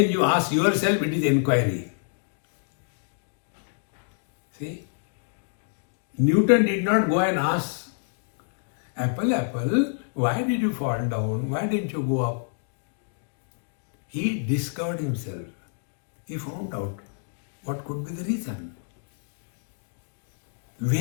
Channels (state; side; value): silent; right; digital silence